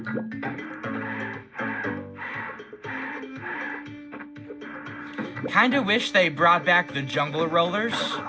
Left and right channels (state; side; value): identical; both; correlation 1.00